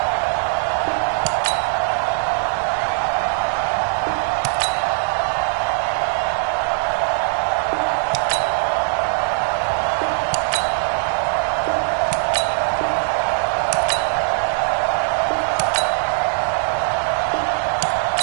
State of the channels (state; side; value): silent; left; 65 dB below the other